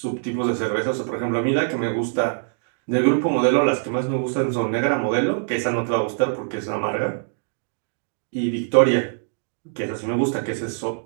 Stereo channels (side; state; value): left; silent; digital silence